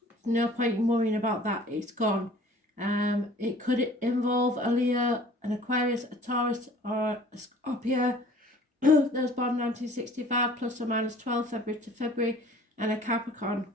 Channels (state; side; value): normal; both; correlation 0.50